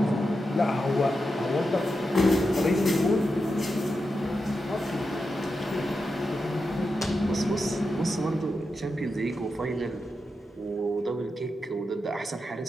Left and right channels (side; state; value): both; normal; correlation 0.88